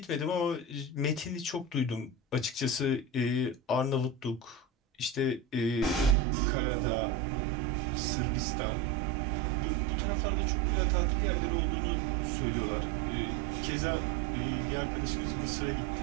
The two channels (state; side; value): drops out; left; at 6.2 s